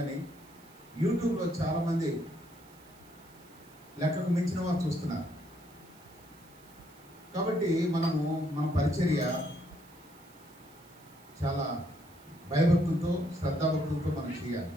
యూట్యూబ్లో చాలామంది లెక్కకు మించిన వారు చూస్తున్నారు. కాబట్టి మన పరిచర్య చాలా భయభక్తులతో శ్రద్ధాభక్తులతో మనం చేయాలి.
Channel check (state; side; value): noise; right; hiss, 26 dB below the sound